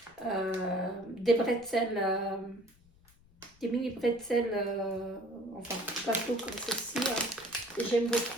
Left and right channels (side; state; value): left; noise; rumble, 28 dB below the sound